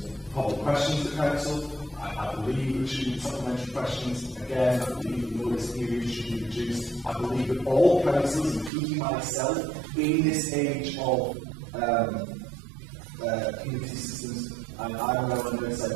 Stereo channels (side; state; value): left; drops out; at 8.7 s